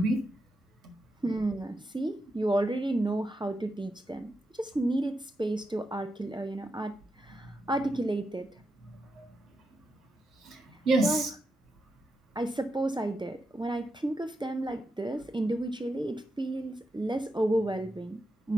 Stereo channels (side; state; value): both; normal; correlation 0.86